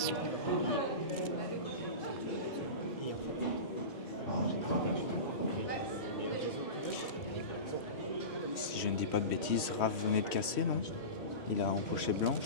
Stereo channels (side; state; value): right; late; 3.1 ms